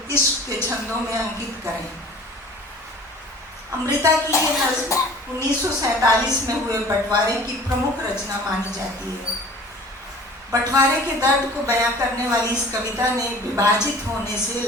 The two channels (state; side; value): normal; both; correlation 0.46